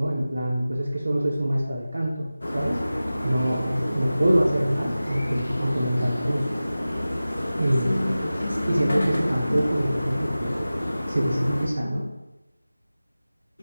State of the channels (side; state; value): both; inverted; correlation -0.96